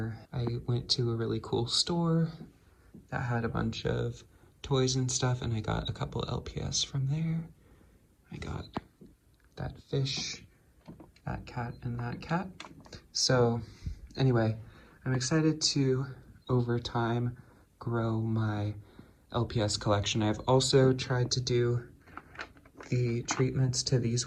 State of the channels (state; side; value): identical; both; correlation 1.00